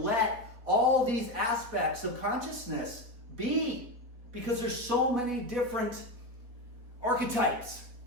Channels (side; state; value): left; late; 4.2 ms